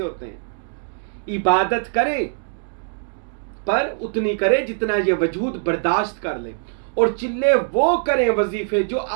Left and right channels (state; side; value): silent; left; digital silence